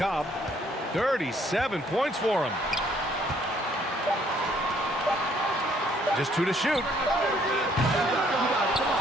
37 points for him. Just 2 to shoot.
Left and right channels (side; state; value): both; normal; correlation 0.65